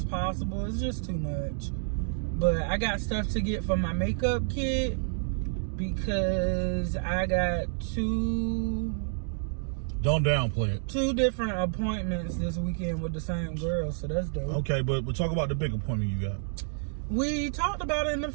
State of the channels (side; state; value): left; silent; digital silence